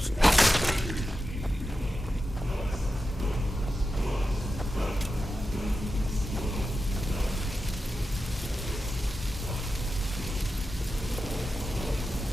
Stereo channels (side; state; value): both; normal; correlation 0.91